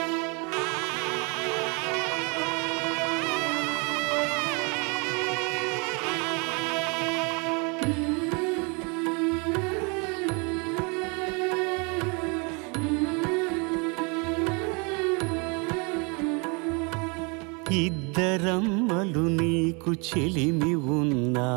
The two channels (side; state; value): left; quieter; 32.1 dB